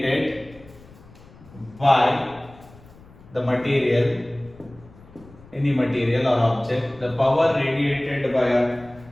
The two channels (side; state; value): left; noise; rumble, 23 dB below the sound